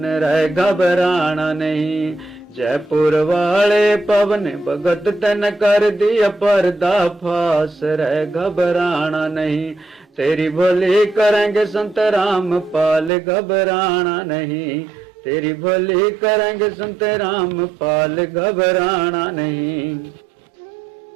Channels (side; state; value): left; drops out; at 13.1 s